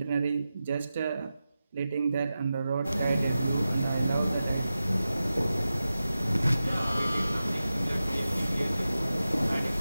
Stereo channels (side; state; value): both; inverted; correlation -0.93